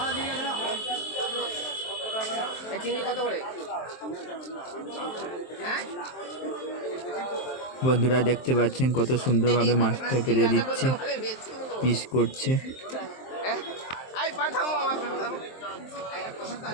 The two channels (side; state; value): right; late; 23 ms